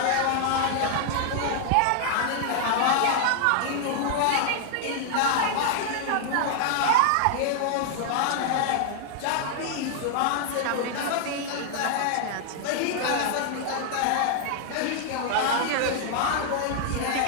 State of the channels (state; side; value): different; both; correlation 0.00